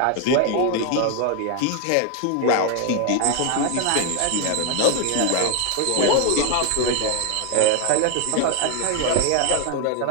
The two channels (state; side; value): different; both; correlation 0.01